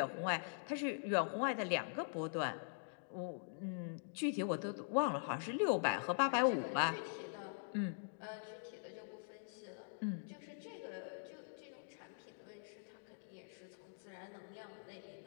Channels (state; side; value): silent; right; digital silence